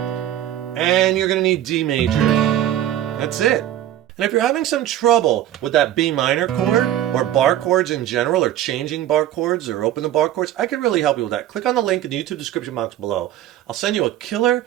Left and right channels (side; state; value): left; quieter; 12.2 dB